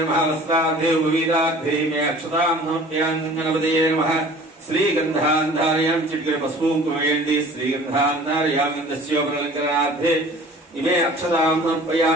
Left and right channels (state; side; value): normal; both; correlation 0.47